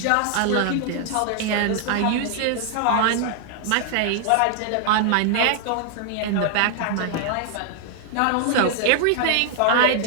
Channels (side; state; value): both; different; correlation 0.00